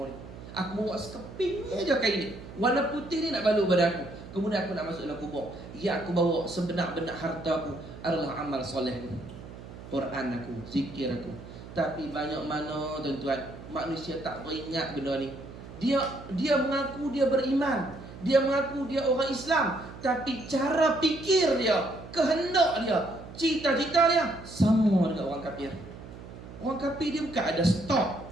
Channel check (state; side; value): noise; right; hum, 15 dB below the sound